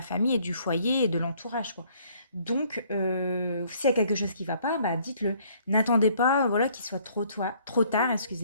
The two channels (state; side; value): inverted; both; correlation -0.62